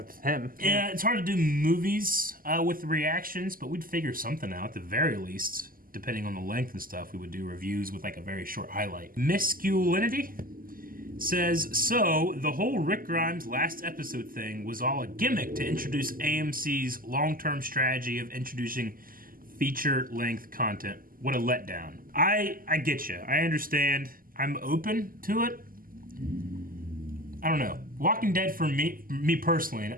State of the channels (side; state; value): left; late; 0.41 ms